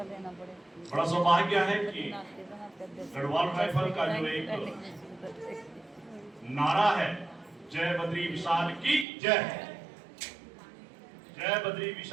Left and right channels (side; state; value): left; drops out; at 9.1 s